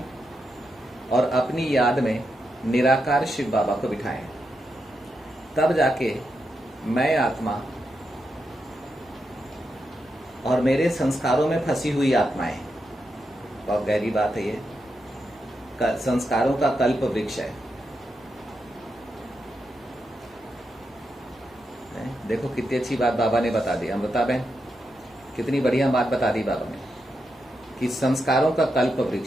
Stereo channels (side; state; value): both; normal; correlation 0.85